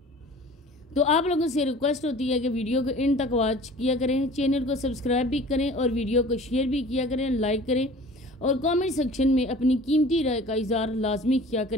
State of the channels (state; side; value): normal; both; correlation 0.45